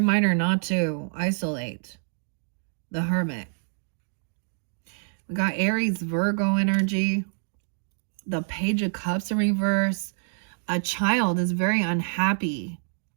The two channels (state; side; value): silent; left; digital silence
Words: not to isolate. The Hermit. We got Aries, Virgo energy. The Page of Cups in reverse. A child is very unhappy.